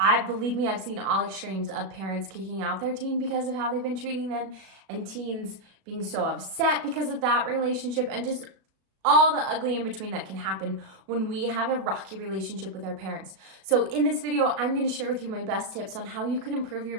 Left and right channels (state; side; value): late; left; 36 ms